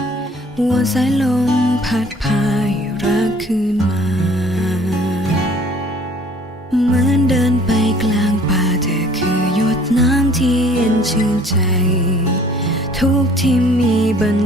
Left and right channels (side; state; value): both; normal; correlation 0.54